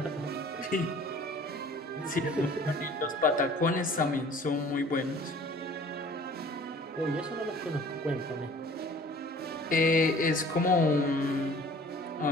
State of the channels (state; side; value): normal; both; correlation 0.49